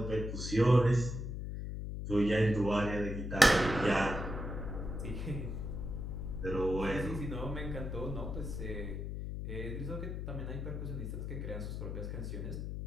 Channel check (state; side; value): noise; left; hum, 5 dB below the sound